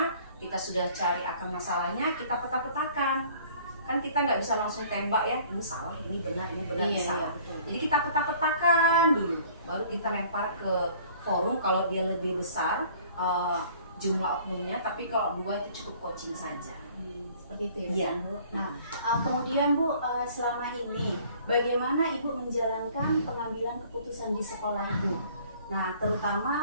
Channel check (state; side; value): inverted; both; correlation -0.54